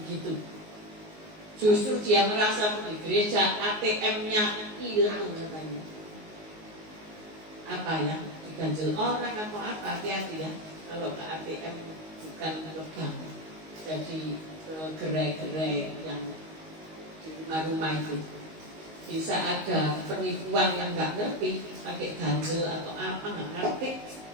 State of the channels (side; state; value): left; late; 19 ms